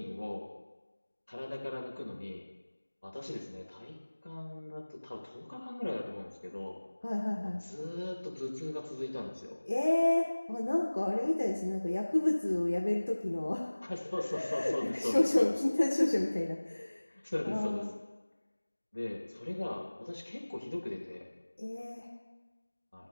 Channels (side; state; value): both; inverted; correlation -1.00